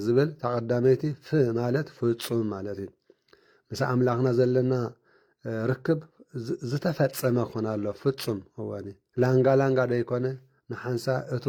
ዝብል ተቐዳመይቲ ማለት ፍጹም ማለት እዩ ምስ ኣምላኽና ዘለና ርክብ ዝተፈጸመ ክኾን ኣሎ ፍጹም እወኒ ላንጋ ደይኮነ ንሓንሳ እቱ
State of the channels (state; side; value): identical; both; correlation 1.00